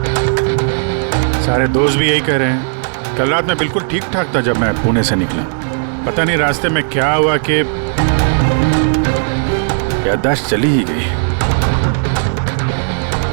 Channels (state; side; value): silent; left; digital silence